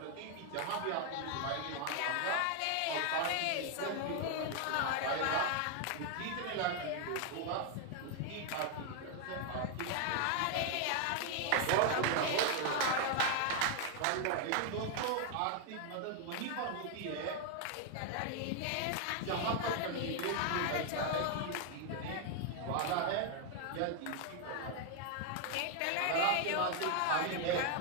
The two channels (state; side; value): different; both; correlation 0.00